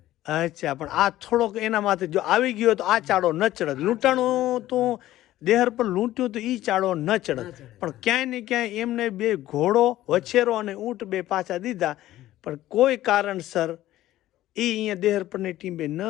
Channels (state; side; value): quieter; right; 14.6 dB